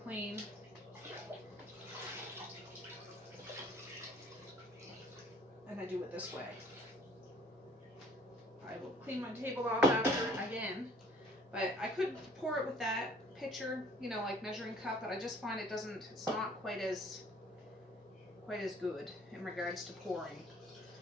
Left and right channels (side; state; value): both; normal; correlation 0.55